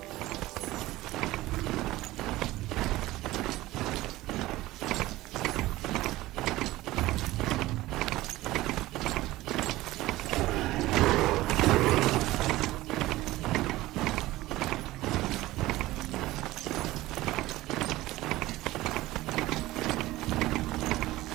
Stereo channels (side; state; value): left; quieter; 17.5 dB